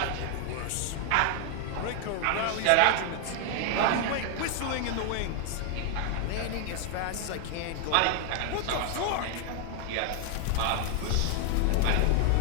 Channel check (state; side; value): different; both; correlation 0.00